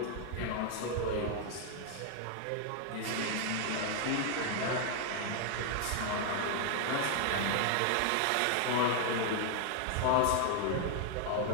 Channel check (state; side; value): different; both; correlation 0.00